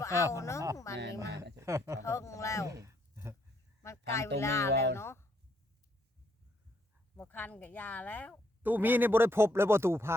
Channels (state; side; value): normal; both; correlation 0.72